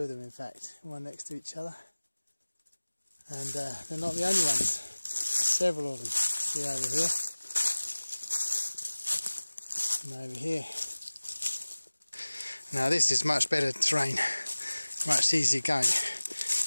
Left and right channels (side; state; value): both; inverted; correlation -1.00